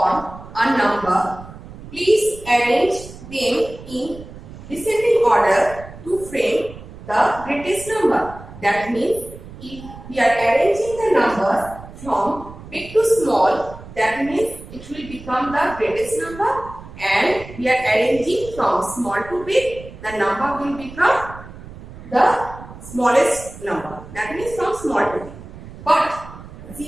a number, please arrange them in descending order to frame the greatest number. That means if we are arranging the numbers from big to small, that means it will become the greatest number, and we are arranging from small to big, the number will become the smallest number. That means from small to big. But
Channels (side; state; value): right; noise; rumble, 15 dB below the sound